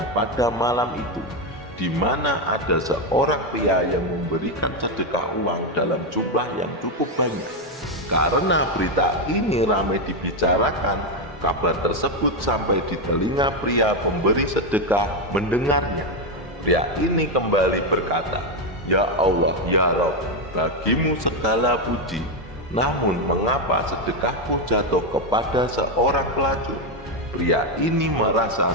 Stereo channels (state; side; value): normal; both; correlation 0.06